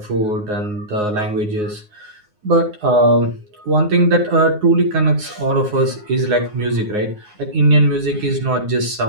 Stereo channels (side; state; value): left; late; 9.6 ms